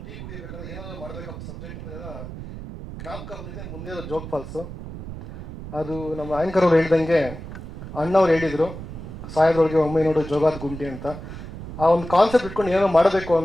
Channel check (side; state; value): right; noise; rumble, 11 dB below the sound